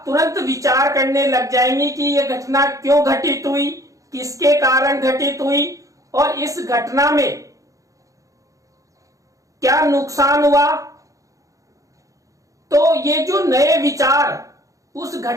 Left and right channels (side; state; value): left; late; 0.16 ms